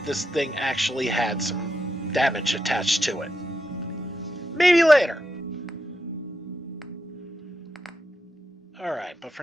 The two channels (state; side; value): normal; both; correlation 0.85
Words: this thing actually had some damage attached to it. Maybe later. Alright, but for